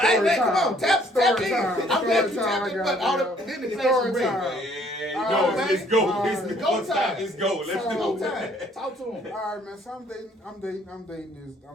hey man, come on, tap Story in. time. I'm glad you Story time, tapped in, I but got all it, the yo. then the Story next time. ring. Yeah, Alright, let's go. alright. It's Go go time. time. Let's go. Let's Go do time. it. Talk to him. All right, man. So I'm dating this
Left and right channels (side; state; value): both; normal; correlation 0.61